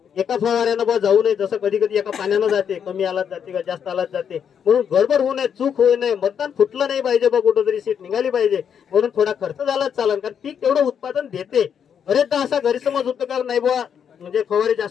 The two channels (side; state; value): right; quieter; 7.9 dB